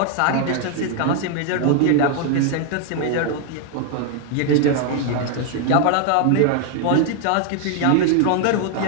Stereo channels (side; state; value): both; different; correlation 0.00